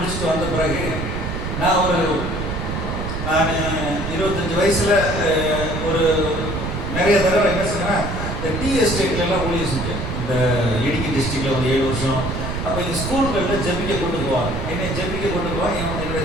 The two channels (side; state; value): right; noise; rumble, 4 dB below the sound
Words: வந்த பிறகு நான் 25 வயசுல ஒரு நிறைய தடவை என்ன சொன்னேன், இந்த டீ எஸ்டேட்லாம் ஊழியர் செஞ்சேன். இந்த இடுக்கி டிஸ்ட்ரிக்ட்ல ஒரு 7 வருஷம். அப்போ இந்த ஸ்கூல்களில் ஜெபிக்க கொண்டு போவாங்க, என்னை ஜெபிக்க கொண்டு போவாங்க. என்னுடைய